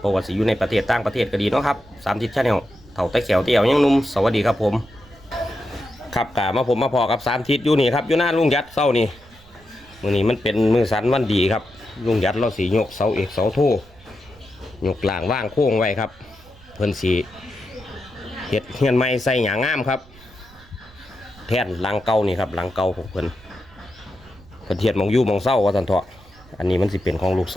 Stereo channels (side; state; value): right; noise; rumble, 24 dB below the sound